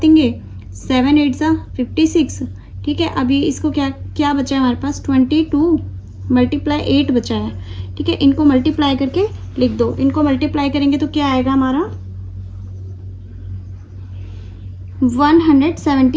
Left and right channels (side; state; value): both; identical; correlation 1.00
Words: देंगे, 7 8 ज़ा 56। ठीक है, अभी इसको क्या क्या बचा है हमारे पास, 22 × 8 बचा है। ठीक है, इनको मल्टीप्लाई करके लिख दो। इनको मल्टीप्लाई करेंगे तो क्या आएगा हमारा